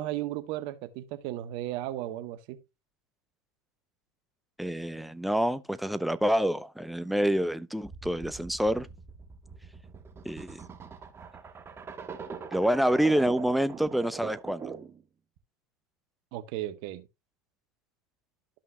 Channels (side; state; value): both; normal; correlation 0.89